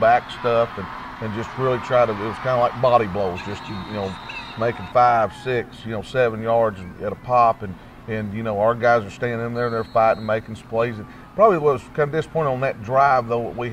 stuff, and just really it was kind of like body blows, just making 5, 6, 7 yards at a pop, and our guys are staying in there, they're fighting, making some plays. And probably was kind of disappointing on that drive, though. We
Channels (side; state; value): both; identical; correlation 1.00